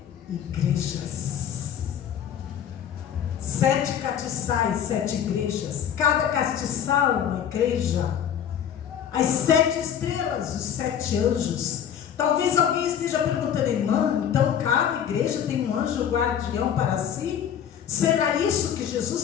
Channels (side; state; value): right; quieter; 9.0 dB